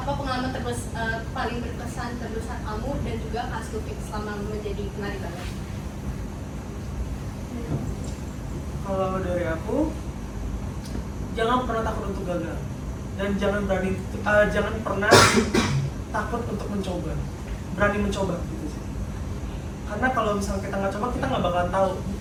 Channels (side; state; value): both; identical; correlation 1.00